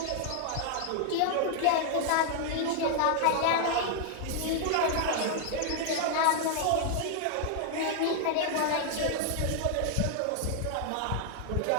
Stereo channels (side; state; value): both; different; correlation 0.00